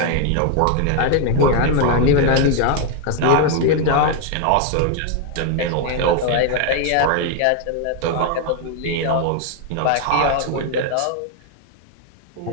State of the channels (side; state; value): both; different; correlation 0.01